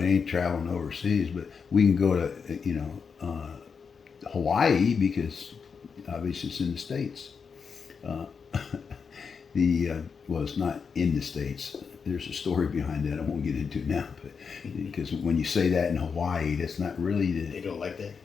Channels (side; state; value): right; quieter; 5.8 dB